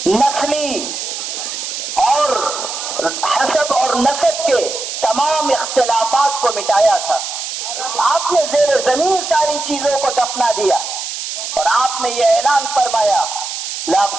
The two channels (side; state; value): right; noise; hiss, 6 dB below the sound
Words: نسلی اور حسب اور نسب کے تمام اختلافات کو مٹایا تھا۔ آپ نے زیر زمین ساری چیزوں کو دفنا دیا، اور آپ نے یہ اعلان فرمایا لا